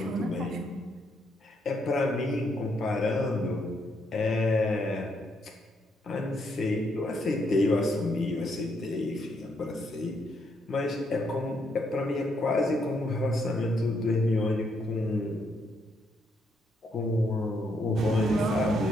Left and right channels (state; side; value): normal; both; correlation 0.75